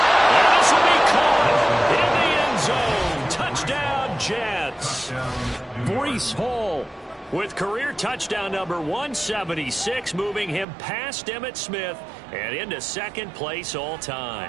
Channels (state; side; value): drops out; left; at 10.7 s